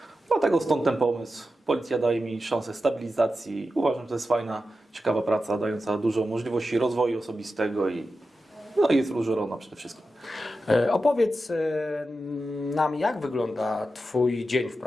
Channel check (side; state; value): both; normal; correlation 0.91